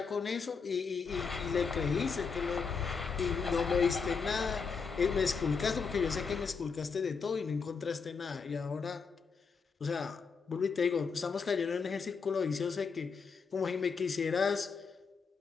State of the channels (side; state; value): right; quieter; 5.3 dB